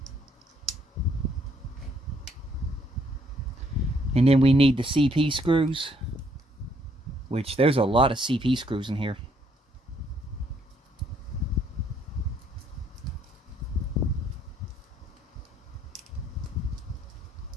And then we need the CP screws, which there's a lot of CP screws in here.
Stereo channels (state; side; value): normal; both; correlation 0.68